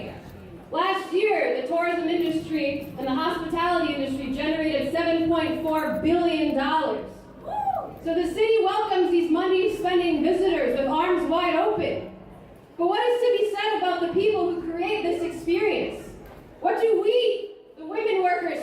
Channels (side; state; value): both; identical; correlation 1.00